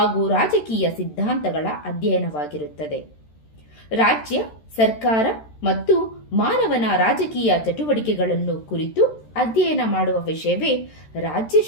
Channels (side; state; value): right; late; 13 ms